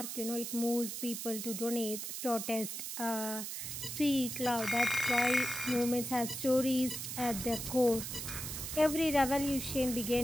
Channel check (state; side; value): noise; right; hiss, 6 dB below the sound